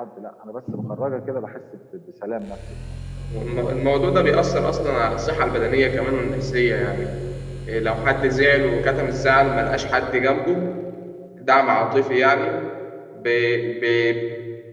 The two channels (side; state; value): both; identical; correlation 1.00